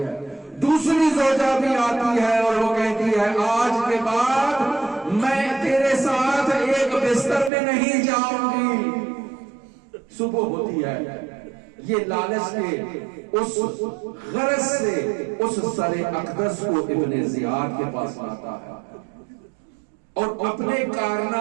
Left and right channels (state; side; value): drops out; left; at 7.5 s